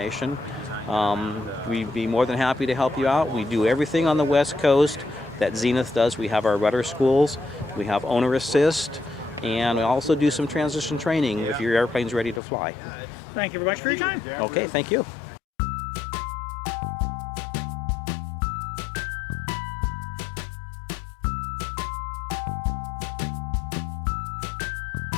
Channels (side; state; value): right; drops out; at 12.4 s